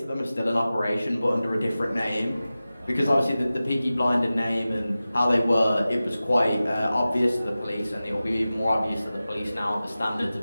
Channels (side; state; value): both; inverted; correlation -0.96